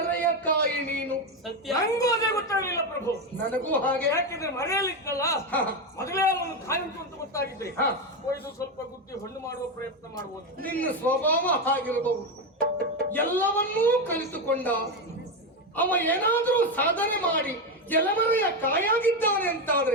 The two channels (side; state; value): both; normal; correlation 0.11